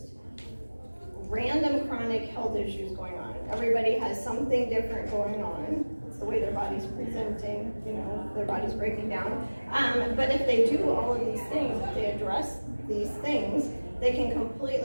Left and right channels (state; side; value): inverted; both; correlation -1.00